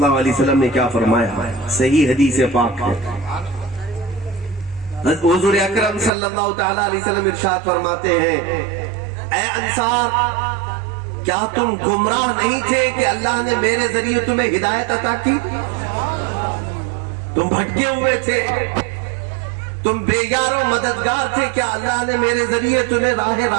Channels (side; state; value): left; drops out; at 6.1 s